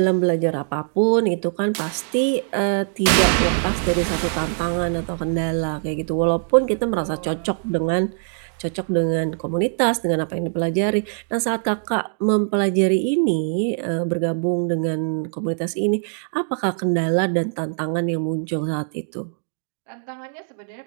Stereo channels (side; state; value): left; silent; digital silence